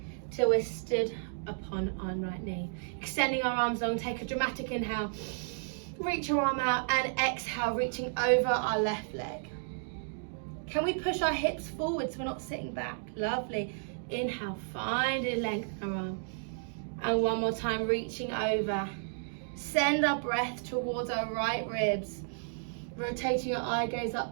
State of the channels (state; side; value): silent; left; digital silence